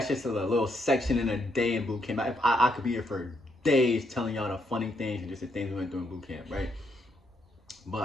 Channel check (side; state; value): both; normal; correlation 0.76